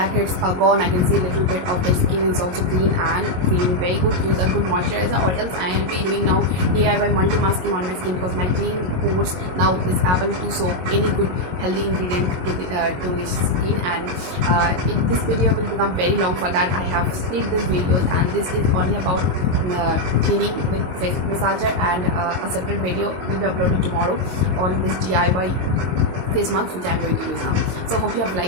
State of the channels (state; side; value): late; left; 22 ms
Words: are gone. I can see a little bit of the skin is also clean and feeling very good. Use a good moisturizer, or else I will be doing now DIY multi-masking on my skin, because my clean pores now is able to soak any good healthy ingredient to the skin. And this video will become very long. For that, I have split this videos, and this is only about cleaning with face massager, and a separate video will be uploaded tomorrow on this DIY face mask which I am going to use now. So hope you have